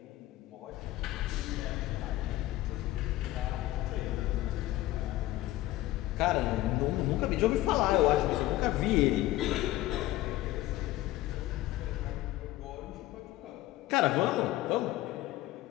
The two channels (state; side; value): quieter; right; 16.3 dB